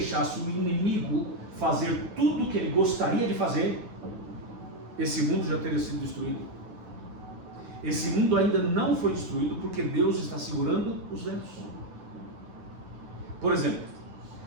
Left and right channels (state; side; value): late; left; 9.3 ms